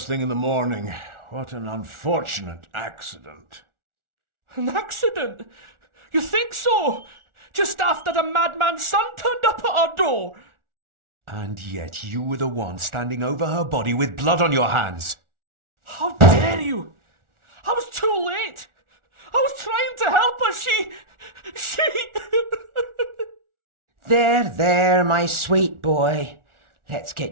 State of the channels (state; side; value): late; left; 1.4 ms